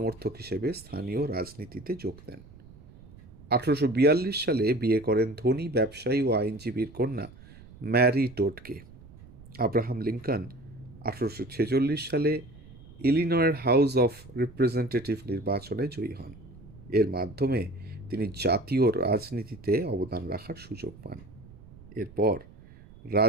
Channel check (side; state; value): right; noise; rumble, 21 dB below the sound